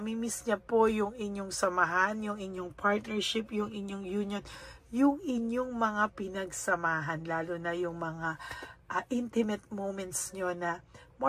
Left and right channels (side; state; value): both; identical; correlation 1.00